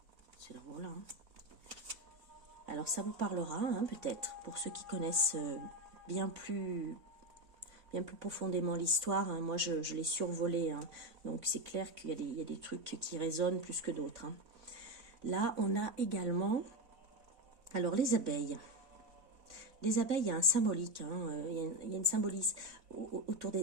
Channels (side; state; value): left; late; 3.6 ms